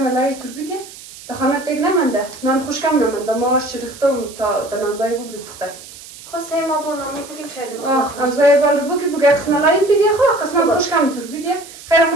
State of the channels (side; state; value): right; noise; hiss, 17 dB below the sound